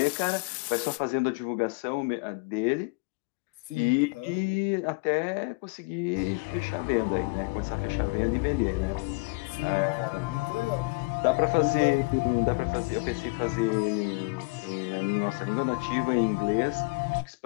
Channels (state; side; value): quieter; right; 28.5 dB